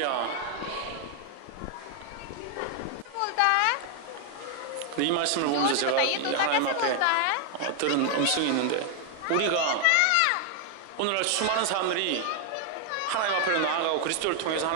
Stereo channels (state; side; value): different; both; correlation 0.00